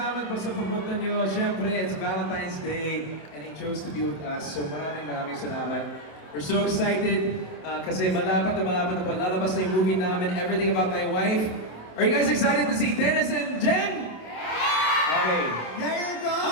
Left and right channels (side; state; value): right; late; 27 ms